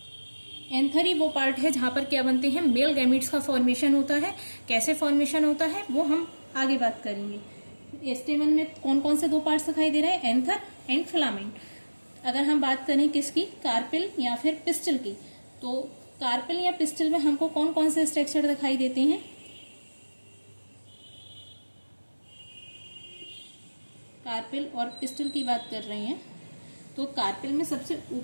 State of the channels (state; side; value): inverted; both; correlation -1.00